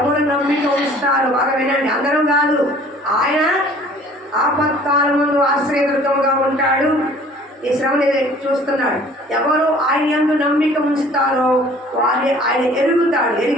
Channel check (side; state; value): both; normal; correlation 0.52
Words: నమ్మిక ఉంచుతారు? బాగా వినండి, అందరం కాదు. ఆయన ఆపత్కాలం ముందు ఆశ్రయ దుర్గముగా ఉంటాడు. ఈ శ్రమని చూస్తున్నాడు. ఎవరు ఆయన యందు నమ్మిక ఉంచుతారో వారిని ఆయన ఎరుగుతాడు.